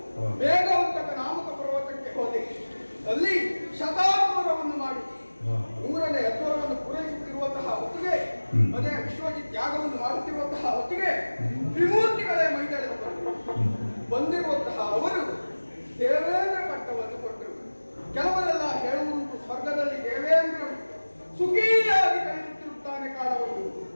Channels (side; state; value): both; inverted; correlation -1.00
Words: ವೇಗವಂತಕ ನಾಮಕ ಪರ್ವತಕ್ಕೆ ಹೋದೆ. ಅಲ್ಲಿ ಶತಾದ್ವರವನ್ನು ಮಾಡಿ 100ನೇ ಅದ್ವರವನ್ನು ಪೂರೈಸುತ್ತಿರುವಂತಹ ಹೊತ್ತಿಗೆ, ಅದೇ ವಿಶ್ವಜಿತ್ ಯಾಗವನ್ನು ಮಾಡುತ್ತಿರುವಂತಹ ಹೊತ್ತಿಗೆ ತ್ರಿಮೂರ್ತಿಗಳೇ ಮೈದಳೆದು ಬಂದಿರುವಂತಹ ಅವರು ದೇವೇಂದ್ರ ಪಟ್ಟವನ್ನು ಕೊಟ್ಟರು. ಕೆಲವರೆಲ್ಲ ಹೇಳುವುದು ಸ್ವರ್ಗದಲ್ಲಿ ದೇವೇಂದ್ರ ಸುಖಿಯಾಗಿ ಕಳೆಯುತ್ತಿರುತ್ತಾನೆ ಕಾಲವನ್ನು.